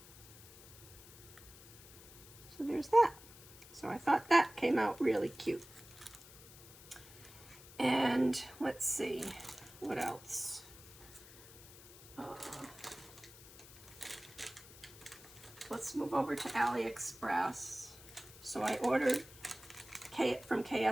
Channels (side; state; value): left; noise; hiss, 19 dB below the sound